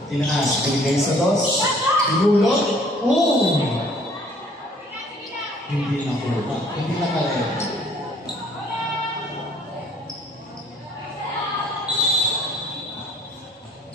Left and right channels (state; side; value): normal; both; correlation 0.58